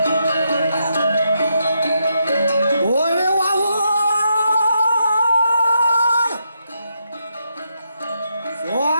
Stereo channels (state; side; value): inverted; both; correlation -0.81